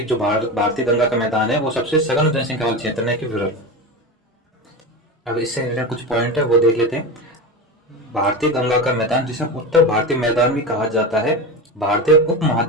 जो भारतीय गंगा का मैदान है वो सबसे सघन जनसंख्या वाला क्षेत्र है कि विरल। अब इससे रिलेटेड कुछ पॉइंट है वो देख लेते हैं। भारतीय गंगा का मैदान, जिसे उत्तर भारतीय मैदान भी कहा जाता है, भारतीय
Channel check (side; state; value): both; normal; correlation 0.23